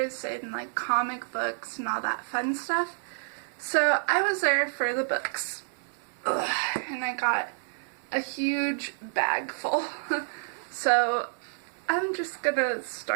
and like comic books and all that fun stuff. So I was there for the books. and I got a huge bag full. So I'm just gonna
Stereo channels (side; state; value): left; silent; digital silence